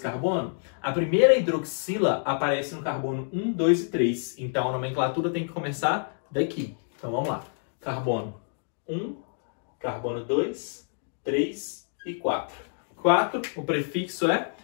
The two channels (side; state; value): right; silent; digital silence